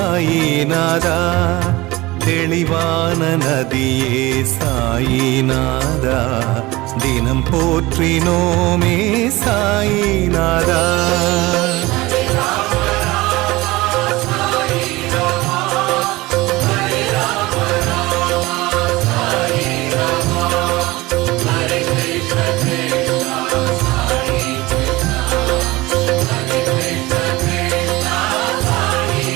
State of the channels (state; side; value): quieter; left; 20.4 dB